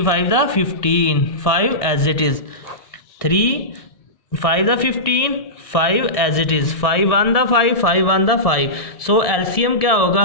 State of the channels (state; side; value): late; right; 1.7 ms